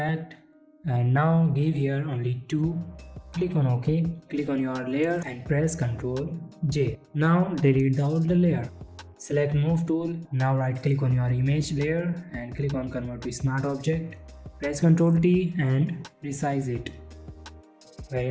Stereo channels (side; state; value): both; identical; correlation 1.00